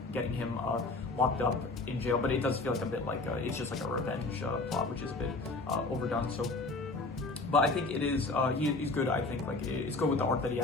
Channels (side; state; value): right; quieter; 3.3 dB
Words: getting him locked up in jail, but it does feel like a bit like, it's just like a revenge plot, which is a bit overdone, so. But I think it is, he's good. I think like it's good with the arc that he